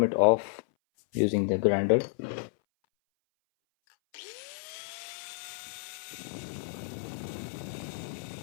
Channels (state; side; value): silent; right; 57 dB below the other